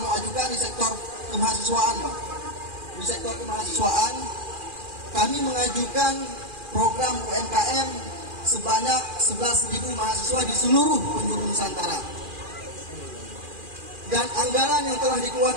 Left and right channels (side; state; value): left; late; 2.4 ms